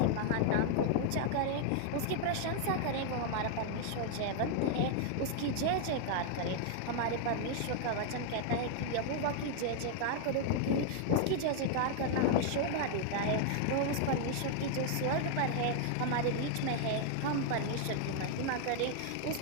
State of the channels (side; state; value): both; different; correlation 0.00